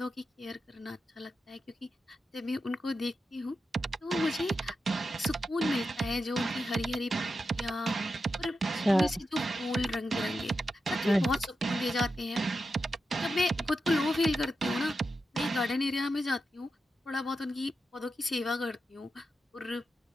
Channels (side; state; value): both; normal; correlation 0.89